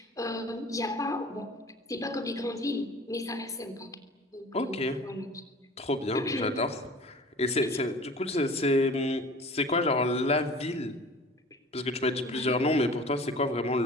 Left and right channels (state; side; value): normal; both; correlation 0.43